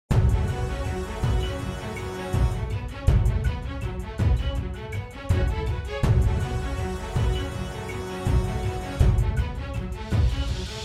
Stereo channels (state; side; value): identical; both; correlation 1.00